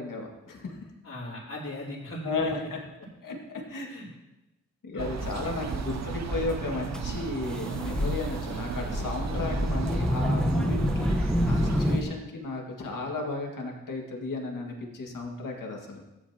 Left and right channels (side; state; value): both; normal; correlation 0.61